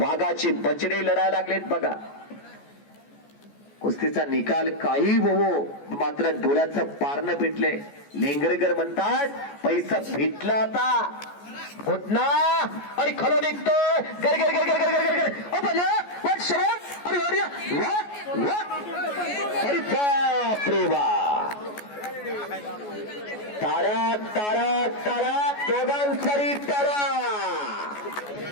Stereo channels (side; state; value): right; late; 14 ms